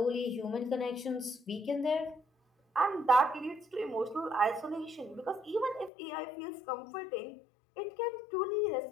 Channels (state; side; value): drops out; right; at 5.9 s